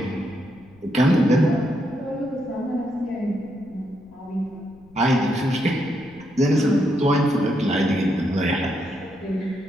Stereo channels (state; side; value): noise; left; rumble, 26 dB below the sound